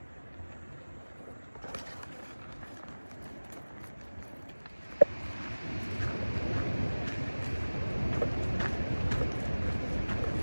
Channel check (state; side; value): inverted; both; correlation -1.00